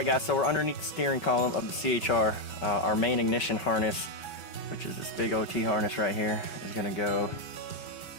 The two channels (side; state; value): right; late; 5.3 ms